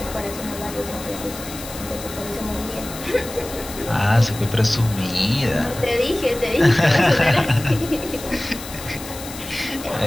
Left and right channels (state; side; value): noise; left; hiss, 13 dB below the sound